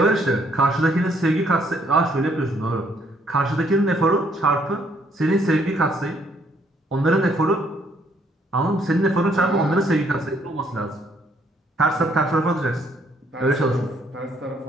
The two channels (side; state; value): both; normal; correlation 0.68